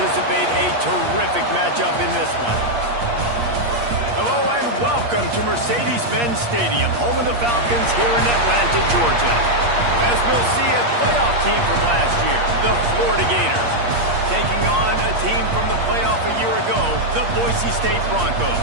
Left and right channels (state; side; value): late; left; 8.5 ms